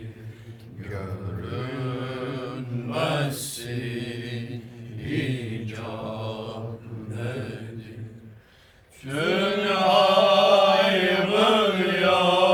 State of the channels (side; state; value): both; identical; correlation 1.00